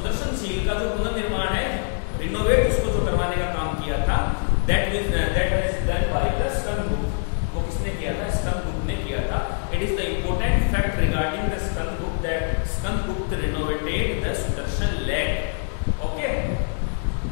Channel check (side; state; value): right; silent; digital silence